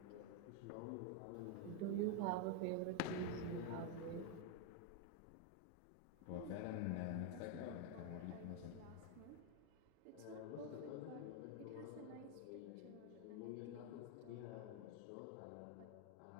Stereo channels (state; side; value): different; both; correlation 0.01